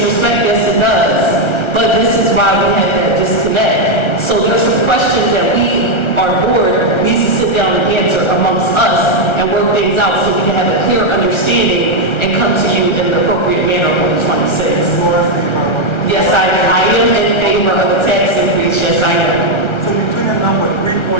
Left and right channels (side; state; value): right; late; 1.4 ms